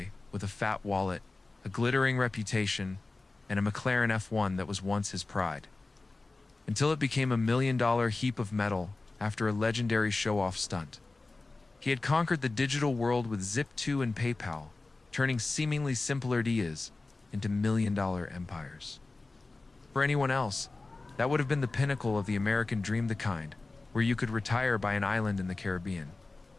with a fat wallet, a glittering reputation, and a McLaren F1 that was once his pride. Until it became $1 million heap of metal after a legendary show-off stunt. He had conquered the digital world with Zip2 and PayPal, turning seemingly simple ideas into million-dollar empires. For anyone else, that would have been the pinnacle of the American dream, the kind where you could retire by an island in the Caribbean,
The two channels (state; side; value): quieter; right; 3.4 dB